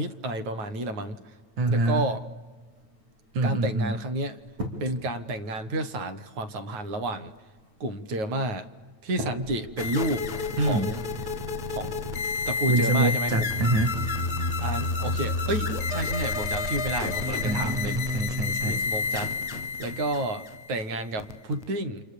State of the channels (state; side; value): late; left; 9.2 ms